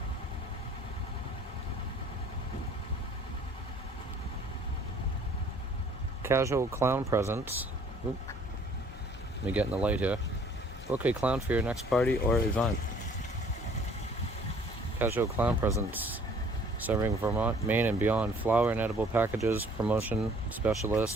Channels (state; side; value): normal; both; correlation 0.56